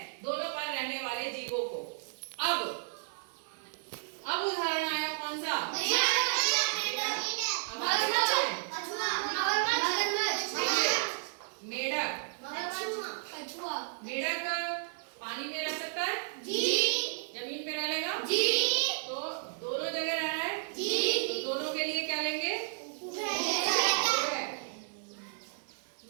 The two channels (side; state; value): left; silent; 56 dB below the other